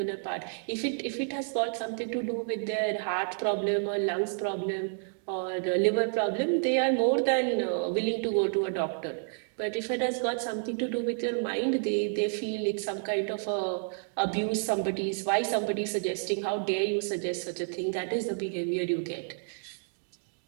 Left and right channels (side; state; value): left; silent; digital silence